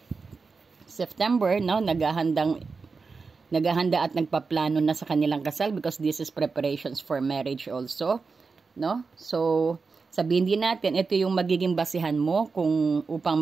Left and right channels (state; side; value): quieter; left; 4.6 dB